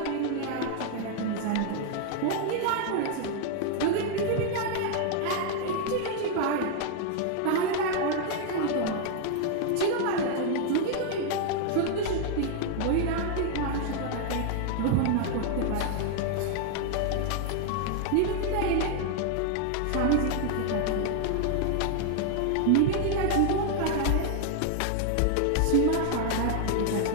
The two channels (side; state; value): both; different; correlation 0.00